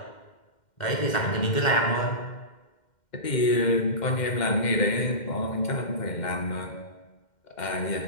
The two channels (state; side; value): late; right; 2.1 ms